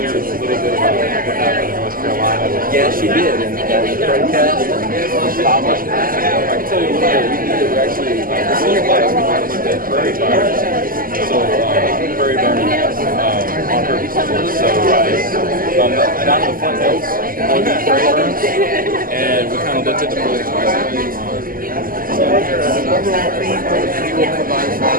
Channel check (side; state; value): left; late; 0.41 ms